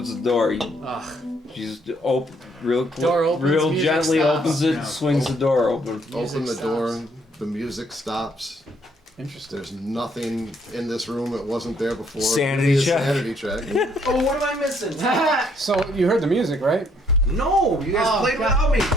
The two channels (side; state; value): both; normal; correlation 0.67